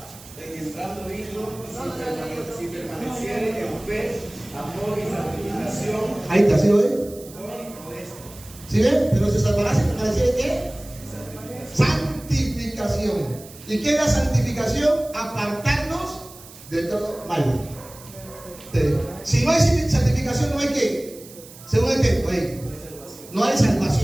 en entrando hijo si permaneciere en fe, amor y santificación. Ahí está, ¿sí lo ve? Con esto. ¿Sí ven? Pero se salvará si permaneciere ¿qué? Santificación. ¿Y qué es la santificación? Apartarnos de todo mal. Si no hay santificación, no hay qué. Según el texto, ahí. No hay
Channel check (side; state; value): right; noise; hiss, 19 dB below the sound